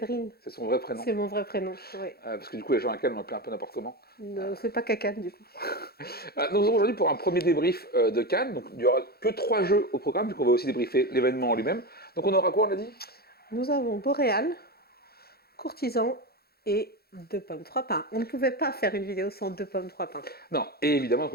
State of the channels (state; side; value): late; right; 0.45 ms